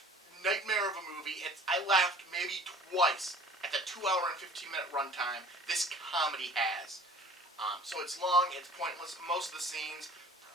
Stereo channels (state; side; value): normal; both; correlation 0.48